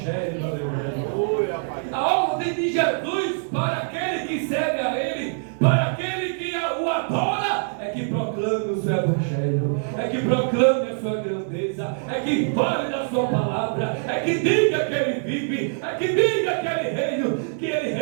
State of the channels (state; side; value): silent; left; 63 dB below the other